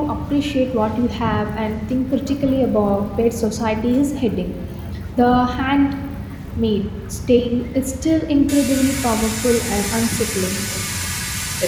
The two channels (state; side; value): identical; both; correlation 1.00